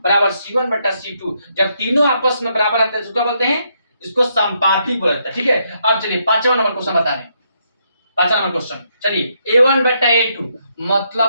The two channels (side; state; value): both; inverted; correlation -0.76